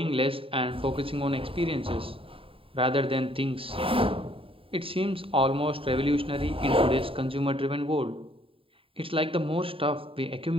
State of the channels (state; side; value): late; left; 0.27 ms